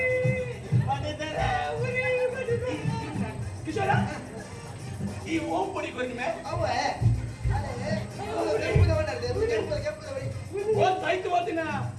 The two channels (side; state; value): both; identical; correlation 1.00